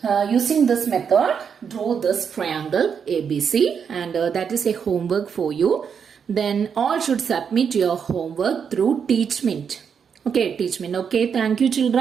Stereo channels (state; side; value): quieter; left; 6.9 dB